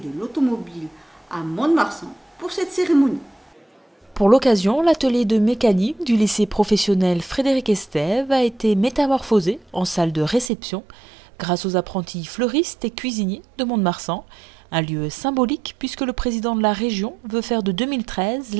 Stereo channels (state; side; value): drops out; left; at 10.5 s